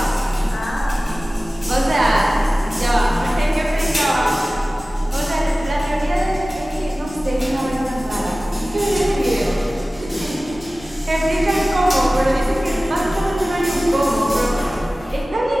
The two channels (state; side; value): normal; both; correlation 0.97